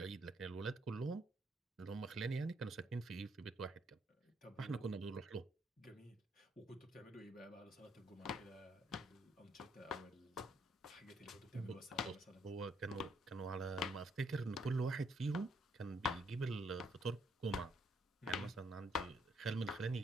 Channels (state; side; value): normal; both; correlation 0.71